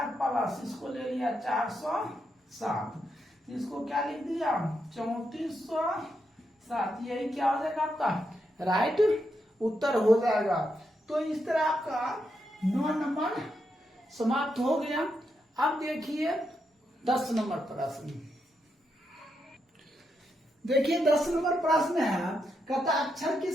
प्लस इसको ले लिया 407, इसको क्या लिख दिया 3400 7, यही क्या हो जाएगा आपका राइट उत्तर हो जाएगा। तो इस तरह आपका 9 नंबर समाप्त हो गया। अब देखिए 10 नंबर प्रश्न। देखिए 10 नंबर प्रश्न है, कहता अक्षर की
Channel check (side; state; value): both; normal; correlation 0.82